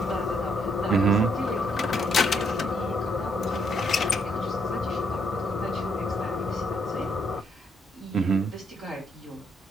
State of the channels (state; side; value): normal; both; correlation 0.72